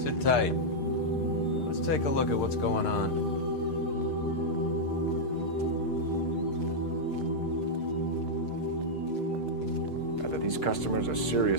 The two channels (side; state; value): right; late; 6.6 ms